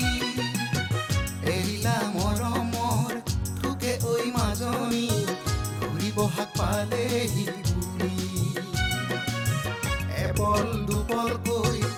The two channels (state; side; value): identical; both; correlation 1.00